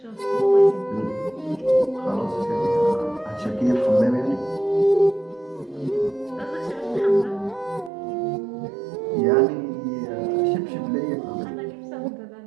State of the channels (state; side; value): drops out; left; at 7.9 s